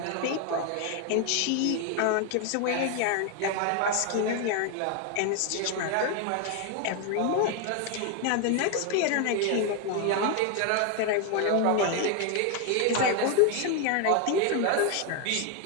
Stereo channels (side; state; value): both; different; correlation 0.01